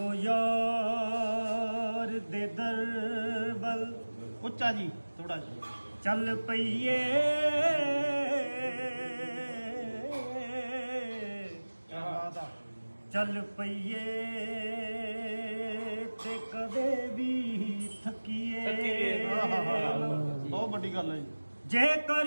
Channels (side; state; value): both; inverted; correlation -1.00